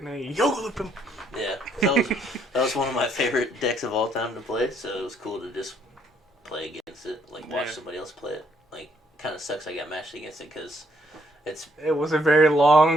they yoga him. Yeah, that was one of my favorite decks of all time to play, so it was cool to just play against it, like watch somebody else play it. Like, kind of sucks I got matched against it because it was a very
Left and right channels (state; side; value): normal; both; correlation 0.69